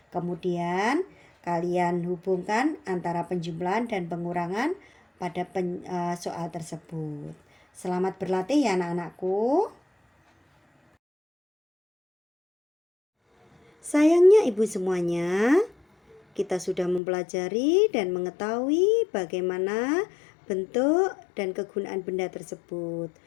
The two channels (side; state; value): right; drops out; at 17.0 s